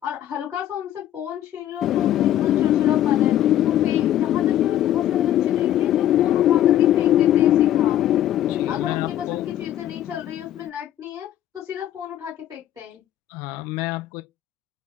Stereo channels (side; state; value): right; quieter; 12.1 dB